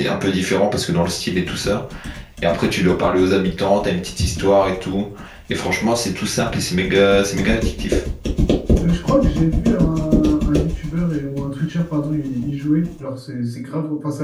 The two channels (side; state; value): both; identical; correlation 1.00